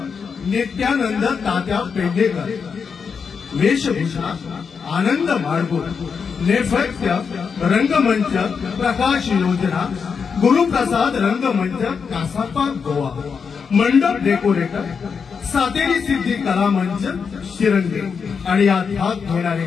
नित्यानंद तात्या पेंढेकर, वेशभूषा आनंद माडगुळ, नेपथ्य रंगमंच प्रकाश योजना गुरुप्रसाद रंगमंच कासापा गोवा, मंडप डेकोरेटर सातेरी सिद्धी कला मंच शिरंगे आणि यात भाग घेणारे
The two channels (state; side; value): quieter; right; 5.9 dB